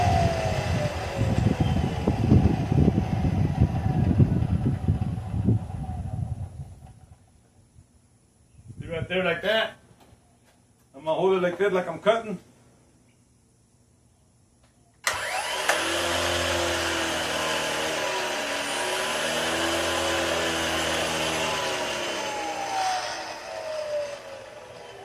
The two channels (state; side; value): identical; both; correlation 1.00